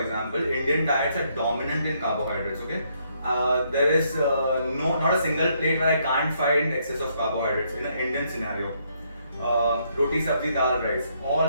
Indian diets are dominant in carbohydrates. Okay, there is not a single plate where I can't find excess of carbohydrates in an Indian scenario. Roti, sabzi, dal, rice,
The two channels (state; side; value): inverted; both; correlation -0.73